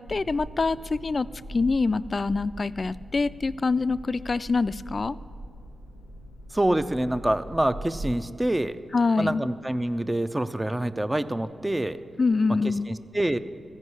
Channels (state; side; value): noise; left; rumble, 28 dB below the sound